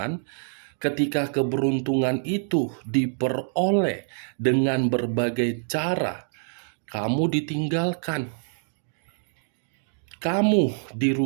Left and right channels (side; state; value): left; silent; digital silence